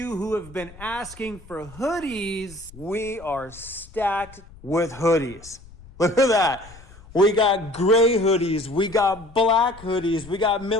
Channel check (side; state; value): left; noise; rumble, 20 dB below the sound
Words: who have been asking for hoodies, we are stacked with hoodies. Look at that. We got gray hoodies. We got black hoodies. We got